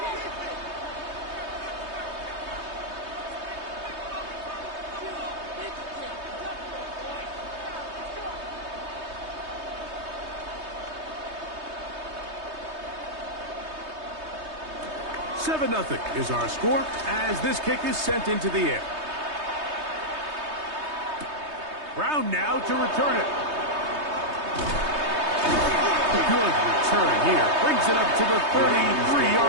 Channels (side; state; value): left; late; 3.2 ms